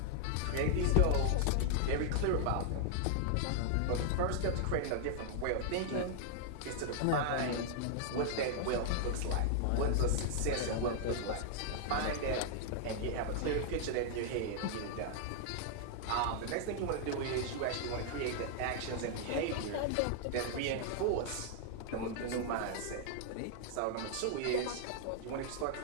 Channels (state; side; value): different; both; correlation -0.01